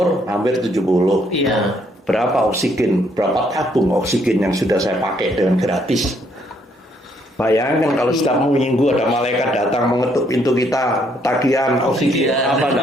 hampir 70. Iya. Berapa oksigen? Berapa tabung oksigen yang sudah saya pakai dengan gratis? Bayangkan kalau setiap minggu ada malaikat datang mengetuk pintu kita, tagihan oksigen apa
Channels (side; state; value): both; normal; correlation 0.70